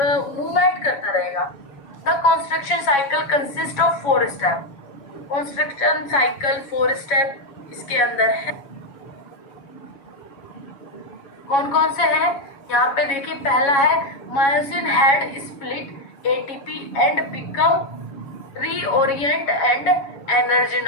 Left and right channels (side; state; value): right; late; 7.2 ms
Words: मूवमेंट करता रहेगा। The construction cycle consist of 4 step, construction cycle 4 step इसके अंदर है। कौन कौन से हैं, यहाँ पे देखिए, पहला है myosin head split ATP and become reorient and